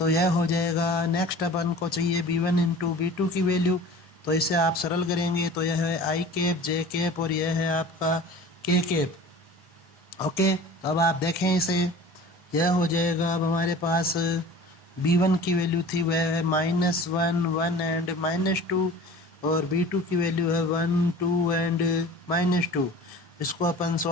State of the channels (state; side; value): normal; both; correlation 0.41